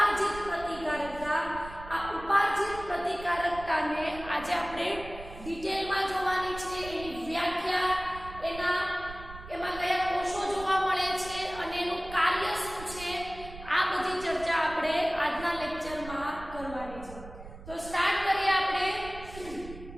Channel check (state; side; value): noise; right; rumble, 14 dB below the sound